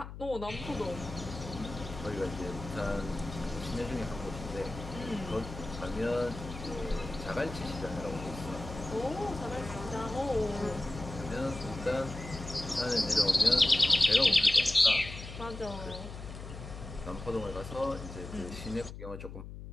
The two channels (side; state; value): left; noise; hum, 11 dB below the sound